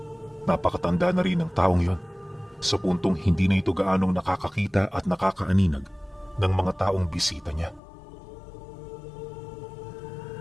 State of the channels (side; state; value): right; drops out; at 7.8 s